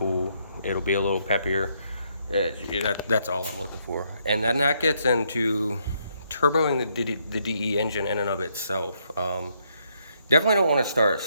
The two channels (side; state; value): both; inverted; correlation -0.73